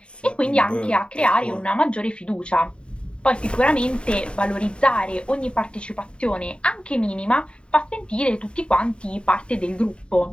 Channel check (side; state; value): right; late; 0.054 ms